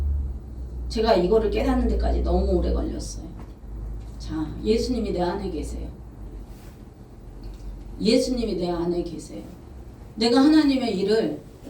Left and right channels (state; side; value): identical; both; correlation 1.00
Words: 제가 이거를 깨닫는 데까지 너무 오래 걸렸어요. 자, 예수님이 내 안에 계세요. 예수님이 내 안에 계세요. 내가 하나님의 일을